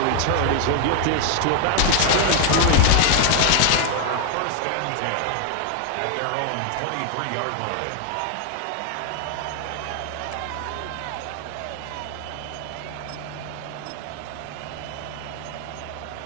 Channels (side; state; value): both; different; correlation 0.00